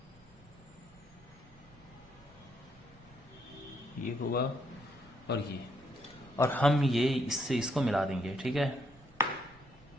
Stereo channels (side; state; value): both; normal; correlation 0.73